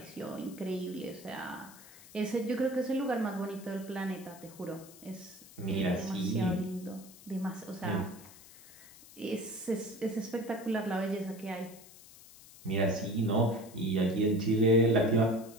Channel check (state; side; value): noise; left; hiss, 20 dB below the sound